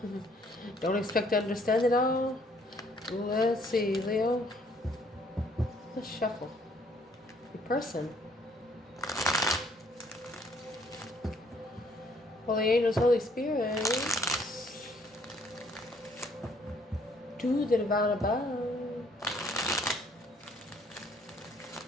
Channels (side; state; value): both; normal; correlation 0.64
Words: Don't expect to understand it all. Let's see, Leo. Let's shuffle. Your person. Holy angels, Holy Spirit, to the divine above.